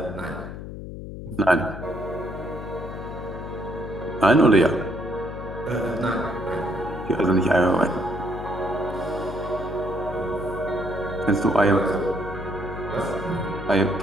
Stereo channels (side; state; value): left; noise; hum, 9 dB below the sound